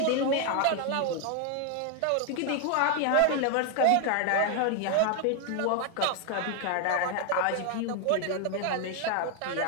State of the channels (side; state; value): both; different; correlation 0.00